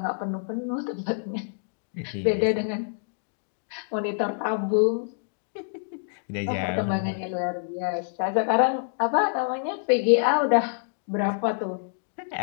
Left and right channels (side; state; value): right; silent; digital silence